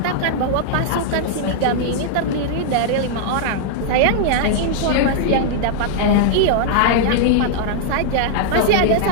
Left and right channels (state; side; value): different; both; correlation -0.01